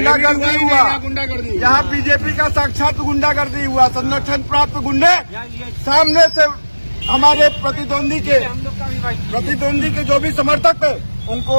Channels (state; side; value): inverted; both; correlation -1.00